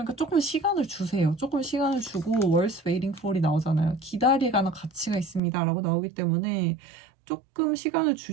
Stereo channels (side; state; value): left; drops out; at 5.4 s